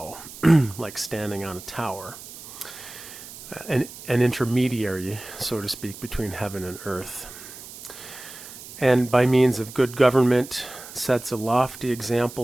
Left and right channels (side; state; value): right; noise; hiss, 15 dB below the sound